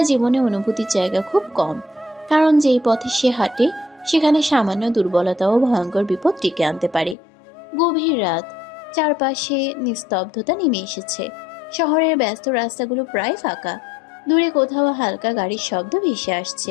জীবনে অনুভূতির জায়গা খুব কম। কারণ যেই পথে সে হাঁটে সেখানে সামান্য দুর্বলতা ও ভয়ঙ্কর বিপদ ডেকে আনতে পারে। গভীর রাত, চারপাশে নিস্তব্ধতা নেমে এসেছে। শহরের ব্যস্ত রাস্তাগুলো প্রায় ফাঁকা। দূরে কোথাও হালকা গাড়ির শব্দ ভেসে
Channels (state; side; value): drops out; right; at 7.2 s